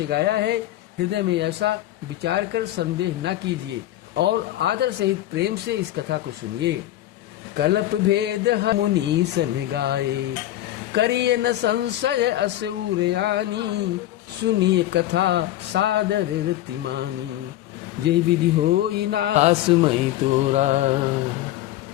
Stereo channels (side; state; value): right; quieter; 14.2 dB